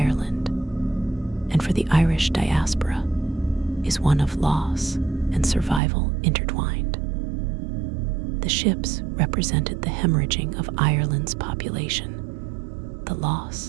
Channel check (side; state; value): left; drops out; at 5.8 s